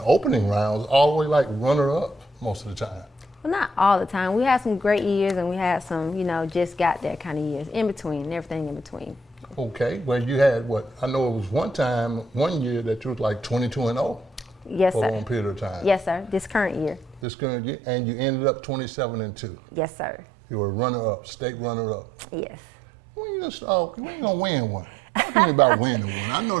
opening rounds, all the way like runner-up most of the time. Well, not all the time. We had some great years and we had some, just got there kind of years. In between, and everything in between. Okay, well you had what? I know it was one year that you was like 22-0. Yes, for sir. a long period of time. Yes, sir. This current year. This current year, and you ended up 27-2. Yes, sir. You were runner-up, state runner-up. Yes. When you gonna win one? Talk to me about winning one. I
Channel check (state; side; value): drops out; left; at 17.2 s